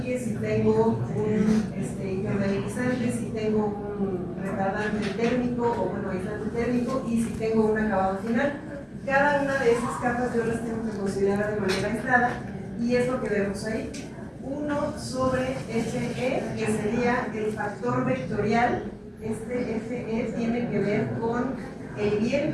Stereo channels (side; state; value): both; identical; correlation 1.00